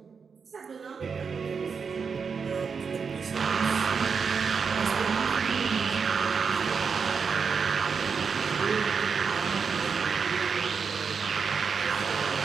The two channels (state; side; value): quieter; left; 5.8 dB